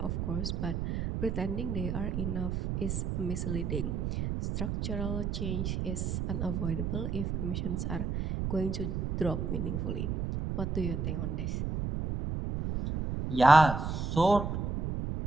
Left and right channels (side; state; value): right; noise; rumble, 1 dB below the sound